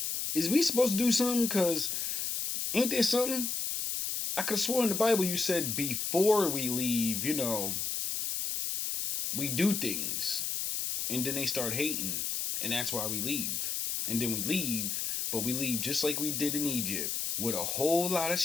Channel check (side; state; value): left; noise; hiss, 1 dB below the sound